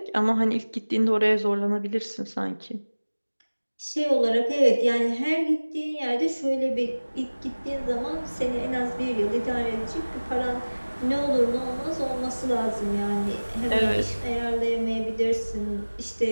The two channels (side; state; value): both; inverted; correlation -1.00